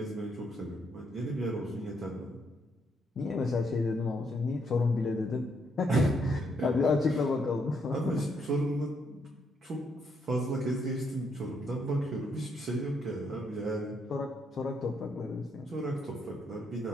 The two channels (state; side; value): normal; both; correlation 0.75